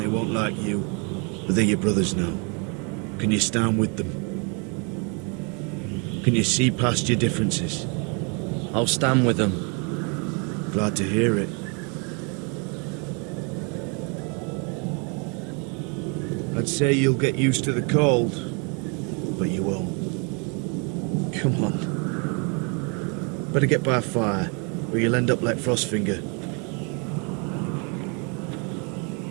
won't like you, but they're your brothers now. Can you stand with them? Can you see past your differences? I'll stand with them. Glad to hear it. I'd say you'll get used to the cold, but you won't. Come on. Better get by a fire, or you'll end up like Frostfinger.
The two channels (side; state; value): left; quieter; 34.8 dB